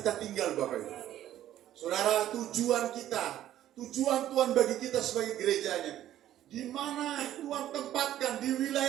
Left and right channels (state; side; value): quieter; left; 12.4 dB